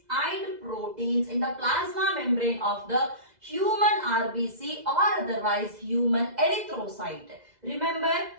and proteins in the plasma membrane of the human RBC, or otherwise human erythrocyte? Remember,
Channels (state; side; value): late; left; 2.0 ms